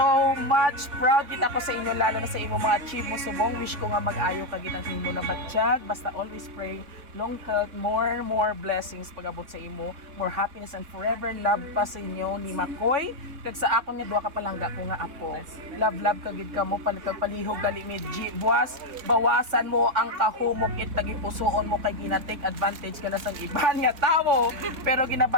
much proud kita ko sa inyo, lalo na sa imo mga achieve mo subong. Wish ko nga mag-ayo ka gitang imo na batsyag. Basta always pray, long health, more blessings pag-abot sa imo, more happiness and forever love pa sa inyo ni Makoy. Kag sa akon nga duha ka palangga ko nga apo. Love ka gid ka mo, palihog gali medji. Buwas, bawasan mo ang kahumok it tagipusoon mo kay gina-take advantage ka na sa iban nga tawo. Pero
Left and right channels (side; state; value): left; late; 3.5 ms